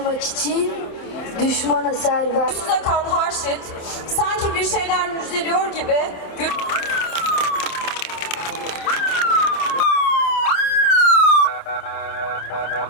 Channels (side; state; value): right; late; 27 ms